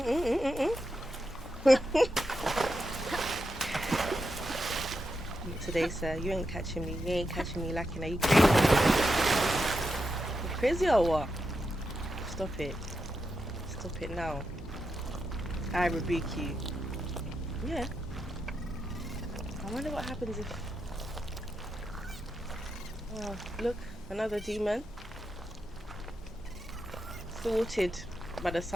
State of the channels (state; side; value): normal; both; correlation 0.86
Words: Today, sir, you ain't catching me. You ain't catching me lacking. Are you crazy? You crazy or what? Stop it. Stop it now. I rebuke you. Yeah. I wonder what happens if... Oh, look, another demon. Thwarted by the